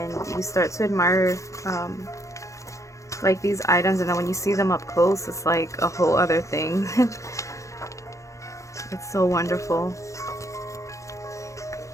you start to admire like these items, and then when you see them up close, it's like a whole other thing. It's so wonderful.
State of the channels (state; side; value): late; right; 0.15 ms